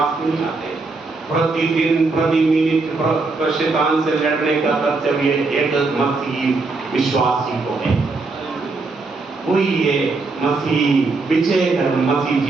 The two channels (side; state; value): left; quieter; 3.8 dB